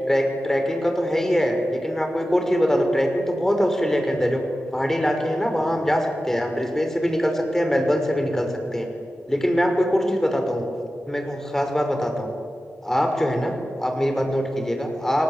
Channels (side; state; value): both; normal; correlation 0.94